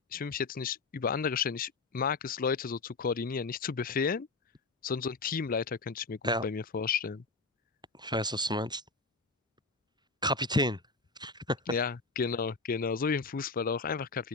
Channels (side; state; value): right; quieter; 3.8 dB